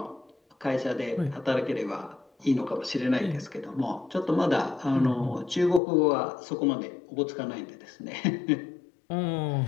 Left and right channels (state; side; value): drops out; right; at 5.8 s